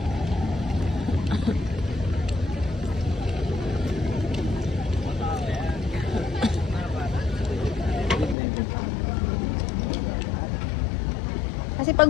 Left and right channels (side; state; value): right; drops out; at 8.3 s